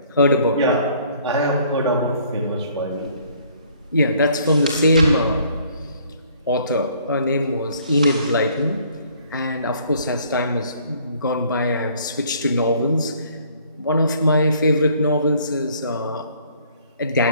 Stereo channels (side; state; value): both; inverted; correlation -0.60